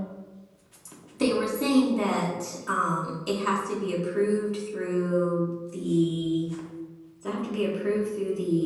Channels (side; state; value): both; identical; correlation 1.00